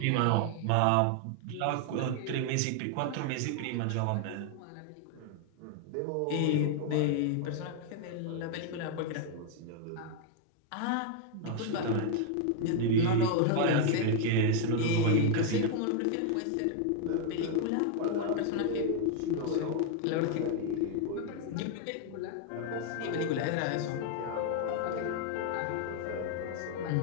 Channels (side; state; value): both; different; correlation 0.00